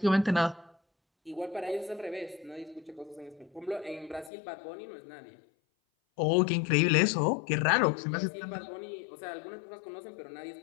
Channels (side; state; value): right; drops out; at 4.3 s